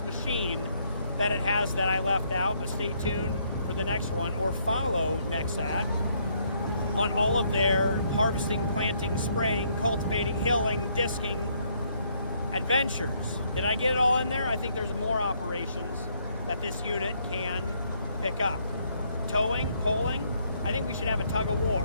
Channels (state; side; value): inverted; both; correlation -0.70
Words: machine that it has that I left out, but stay tuned for the next one, or follow Nexat on all of their harvesting, planting, spraying, cultivating, hilling, disking adventures. Did I get it all in there? I think there's more operations that this unit can pick up. Towing, poling, I think we should have a tug of